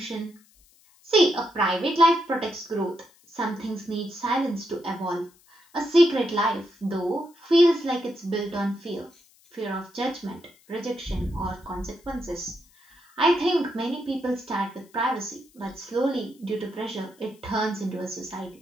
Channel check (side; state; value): left; noise; hiss, 30 dB below the sound